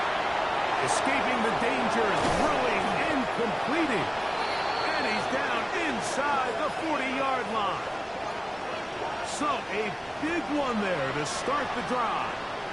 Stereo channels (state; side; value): identical; both; correlation 1.00